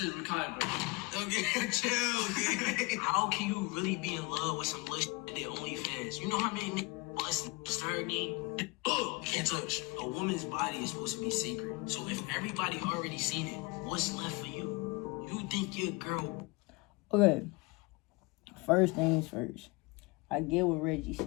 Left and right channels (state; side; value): quieter; right; 25.8 dB